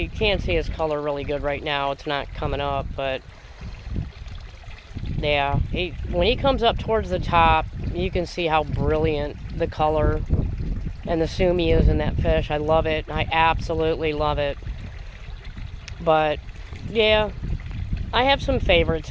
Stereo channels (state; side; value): identical; both; correlation 1.00